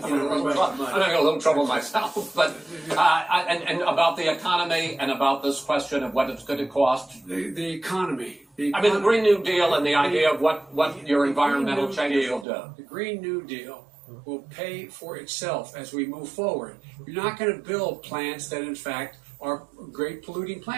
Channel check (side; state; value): left; drops out; at 12.5 s